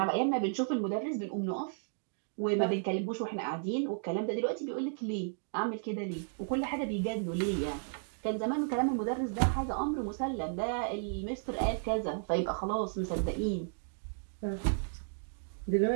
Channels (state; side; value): silent; left; digital silence